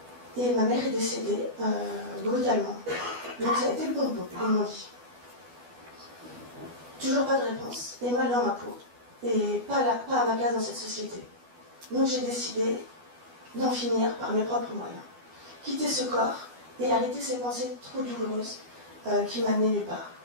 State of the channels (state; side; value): late; left; 12 ms